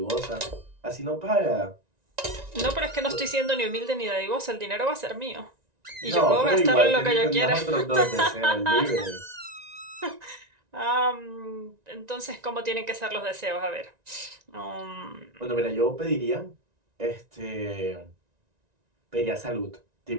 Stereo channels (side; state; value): left; late; 1.9 ms